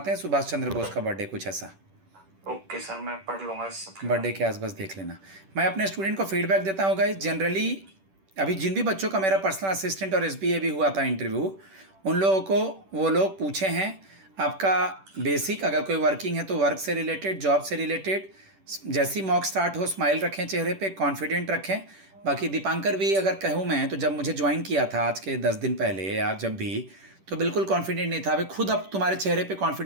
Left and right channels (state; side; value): late; left; 10 ms